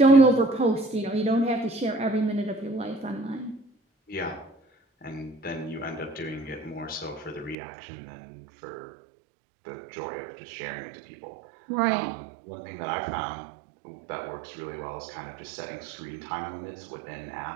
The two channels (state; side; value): drops out; left; at 7.6 s